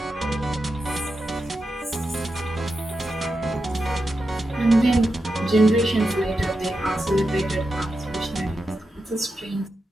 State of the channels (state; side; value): normal; both; correlation 0.89